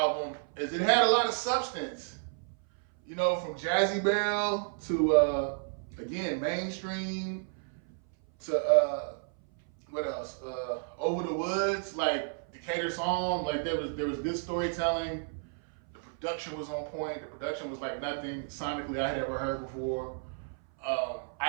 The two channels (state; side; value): silent; left; 57 dB below the other